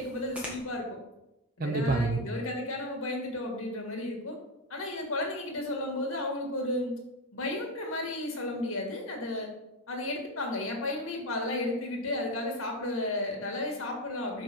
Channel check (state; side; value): normal; both; correlation 0.11